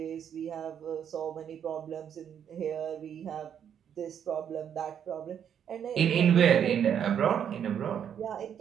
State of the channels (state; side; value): quieter; left; 8.7 dB